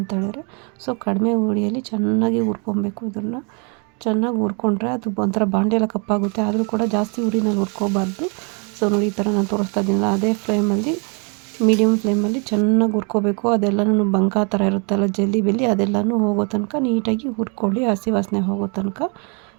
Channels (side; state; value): left; quieter; 35.7 dB